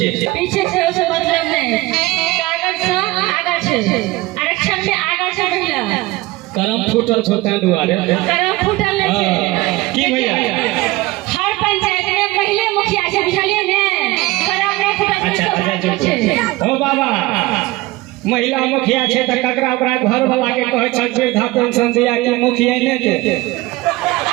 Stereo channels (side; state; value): left; quieter; 20.0 dB